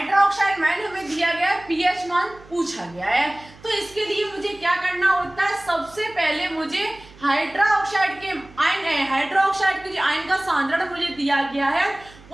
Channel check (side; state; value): right; noise; hum, 23 dB below the sound